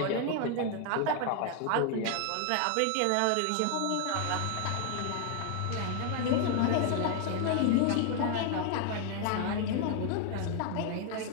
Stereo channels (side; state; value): both; different; correlation 0.00